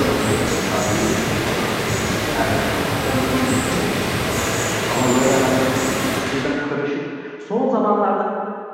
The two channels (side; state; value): both; identical; correlation 1.00